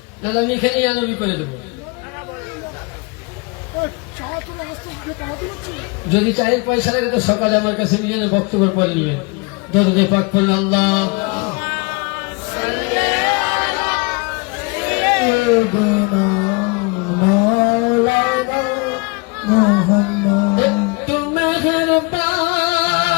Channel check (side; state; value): right; quieter; 29.0 dB